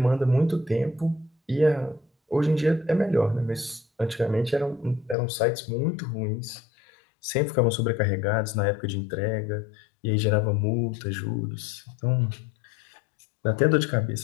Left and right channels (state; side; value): drops out; right; at 5.2 s